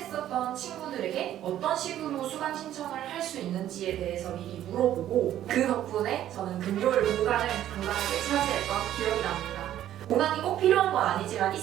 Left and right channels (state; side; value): quieter; left; 12.0 dB